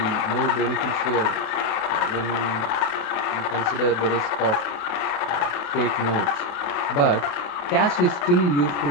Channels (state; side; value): late; right; 28 ms